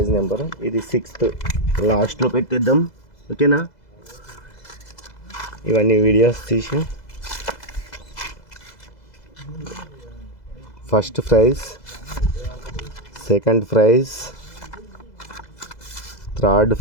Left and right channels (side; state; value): right; late; 2.0 ms